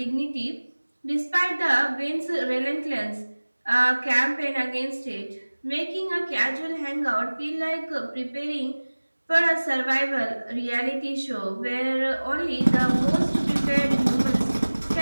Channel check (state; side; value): inverted; both; correlation -1.00